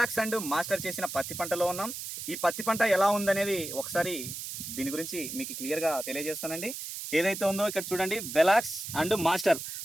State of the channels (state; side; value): noise; right; hiss, 7 dB below the sound